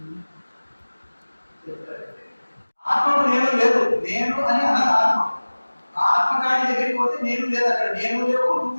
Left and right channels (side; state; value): both; inverted; correlation -1.00